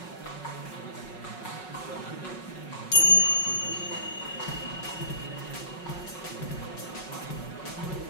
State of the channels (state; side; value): late; right; 5.4 ms